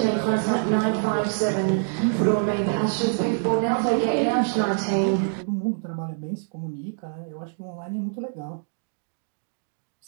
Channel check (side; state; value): left; silent; digital silence